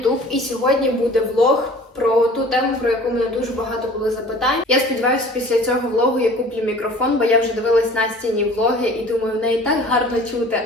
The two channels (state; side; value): normal; both; correlation 0.46